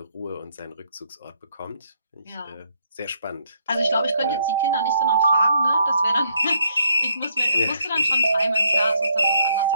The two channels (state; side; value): inverted; both; correlation -0.71